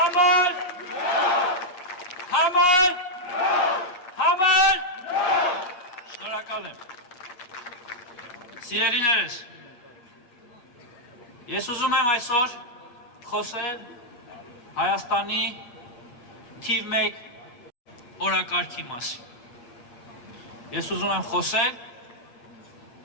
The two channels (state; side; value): late; right; 8.4 ms